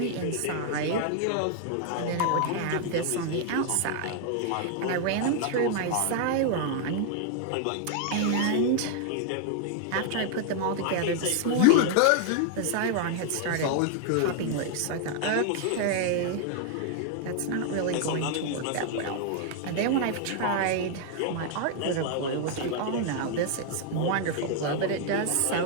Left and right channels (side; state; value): both; different; correlation 0.00